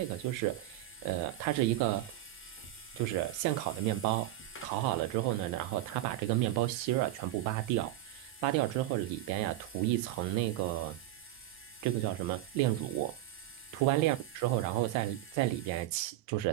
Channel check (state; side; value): quieter; left; 14.7 dB